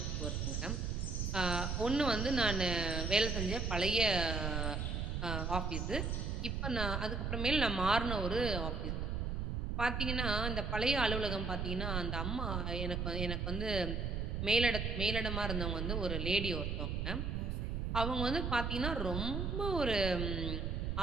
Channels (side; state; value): right; noise; rumble, 1 dB below the sound